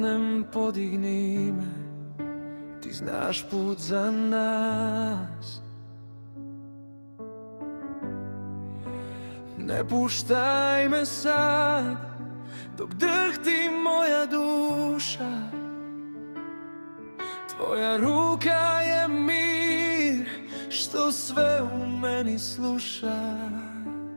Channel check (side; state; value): both; inverted; correlation -1.00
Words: podigni me, ti znaš put za nas. Ne puštaj me sad, dok drhti moja duša. Tvoja ruka je mir, što sve u meni sluša.